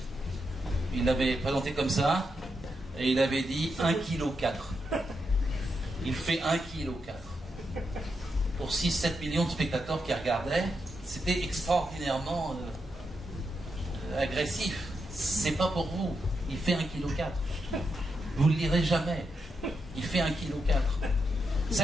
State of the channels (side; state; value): both; normal; correlation 0.84